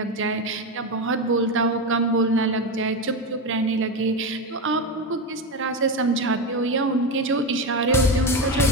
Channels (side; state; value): both; normal; correlation 0.16